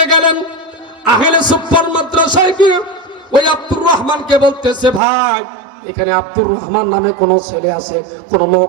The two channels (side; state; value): left; drops out; at 5.0 s